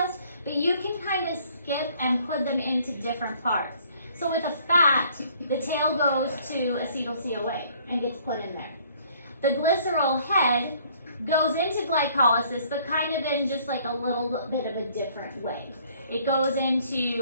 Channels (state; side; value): inverted; both; correlation -0.60